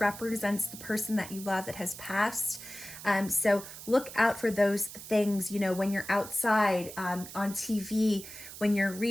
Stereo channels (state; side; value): noise; right; hiss, 13 dB below the sound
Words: the person that you love that has passed. So look out for those things, when you're outside, on TV, when you're